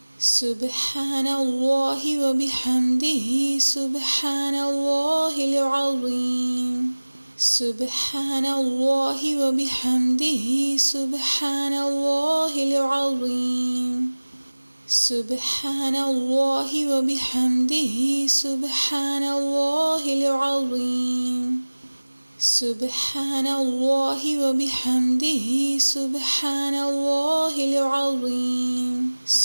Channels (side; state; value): both; inverted; correlation -1.00